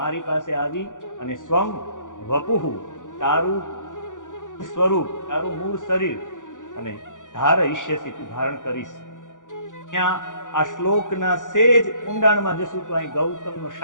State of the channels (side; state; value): right; late; 0.87 ms